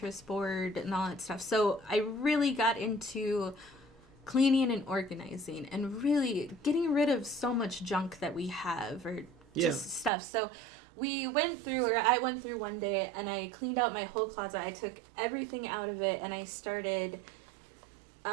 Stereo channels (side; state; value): left; drops out; at 10.1 s